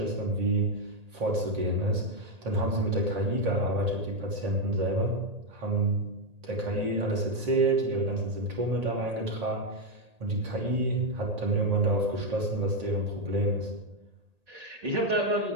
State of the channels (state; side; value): late; left; 1.8 ms